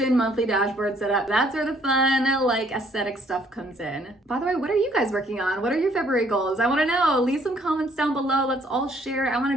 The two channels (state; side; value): normal; both; correlation 0.64